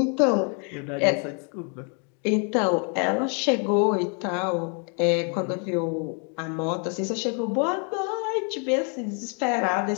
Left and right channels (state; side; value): quieter; right; 38.9 dB